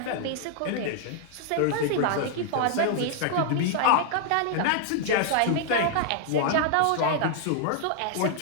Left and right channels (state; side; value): different; both; correlation 0.00